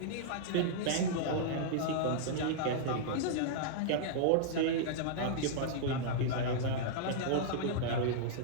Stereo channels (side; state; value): both; different; correlation -0.02